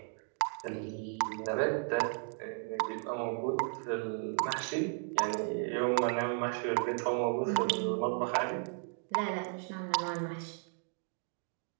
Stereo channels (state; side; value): silent; left; 55 dB below the other